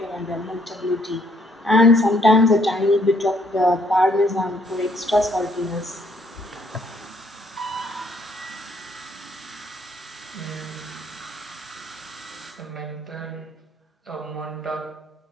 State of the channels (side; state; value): both; normal; correlation 0.67